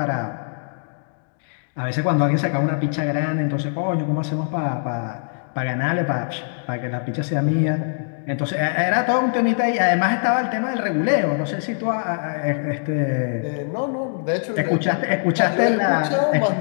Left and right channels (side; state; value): right; silent; digital silence